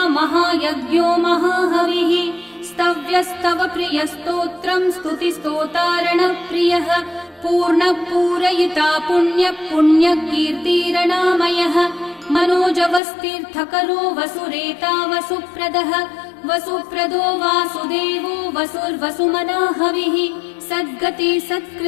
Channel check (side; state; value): right; drops out; at 13.0 s